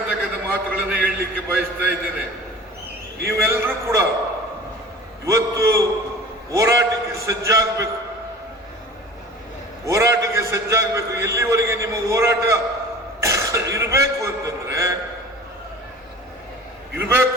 ಮಾತುಗಳನ್ನು ಹೇಳಲಿಕ್ಕೆ ಬಯಸ್ತಾ ಇದ್ದೇನೆ. ನೀವೆಲ್ಲರೂ ಕೂಡ ಇವತ್ತು ಹೋರಾಟಕ್ಕೆ ಸಜ್ಜಾಗಬೇಕು. ಎಲ್ಲಿವರೆಗೆ ನಿಮ್ಮ ಹೋರಾಟ ಇರಬೇಕು ಅಂತಂದ್ರೆ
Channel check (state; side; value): normal; both; correlation 0.40